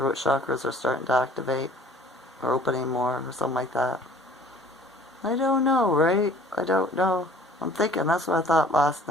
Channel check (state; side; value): normal; both; correlation 0.51